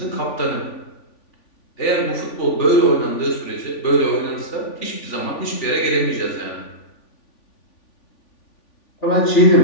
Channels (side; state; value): right; late; 3.5 ms